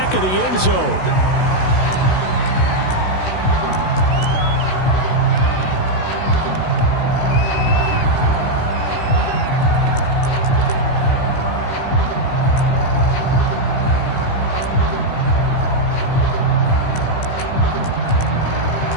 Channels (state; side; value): late; right; 16 ms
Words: of the end zone.